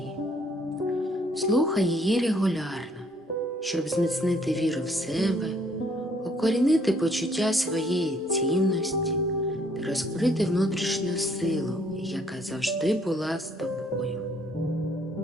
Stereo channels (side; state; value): both; normal; correlation 0.64